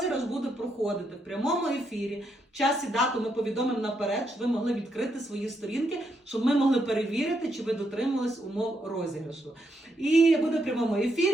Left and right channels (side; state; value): both; normal; correlation 0.79